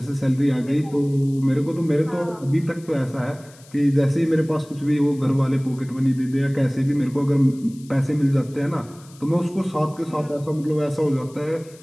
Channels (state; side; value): noise; left; hiss, 25 dB below the sound